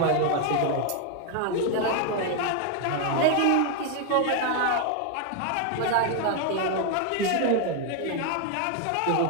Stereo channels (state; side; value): different; both; correlation 0.00